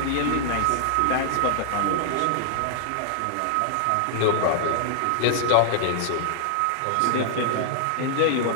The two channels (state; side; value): different; both; correlation -0.01